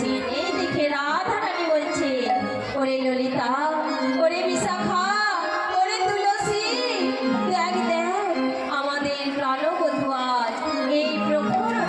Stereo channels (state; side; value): identical; both; correlation 1.00